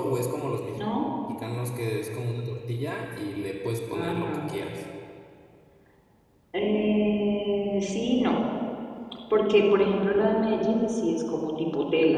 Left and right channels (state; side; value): identical; both; correlation 1.00